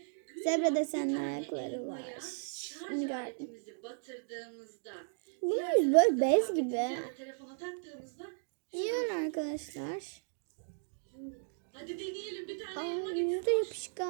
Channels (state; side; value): silent; left; digital silence